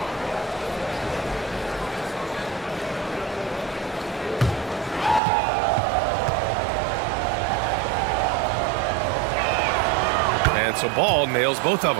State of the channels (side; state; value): left; drops out; at 5.2 s